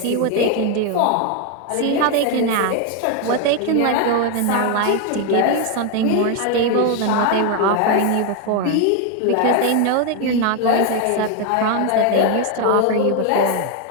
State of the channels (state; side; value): different; both; correlation 0.01